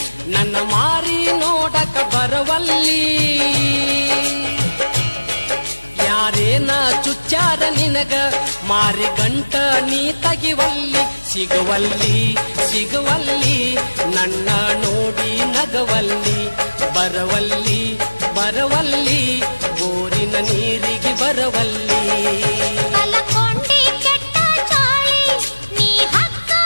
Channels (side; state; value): both; inverted; correlation -1.00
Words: ನನ್ನ ಮಾರಿ ನೋಡಕ ಬರವಲ್ಲಿ ಯಾರೇನ ಚುಚ್ಚಾರ ನಿನಗ ಮಾರಿ ಗಂಟ ನೀ ತಗಿವಲ್ಲಿ ಸಿಗುವಲ್ಲಿ ಸಿಗುವಲ್ಲಿ ನನ್ನ ನೋಡಿ ನಗವಲ್ಲಿ ಬರವಲ್ಲಿ ಬರವಲ್ಲಿ ಬೋರಿನ ನೀರಿಗೆ ಬರವಲ್ಲಿ